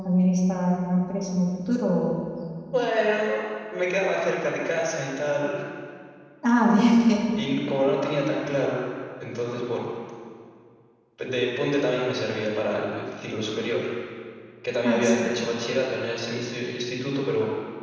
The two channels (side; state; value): both; identical; correlation 1.00